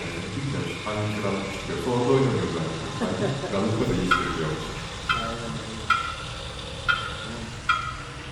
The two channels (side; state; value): both; identical; correlation 1.00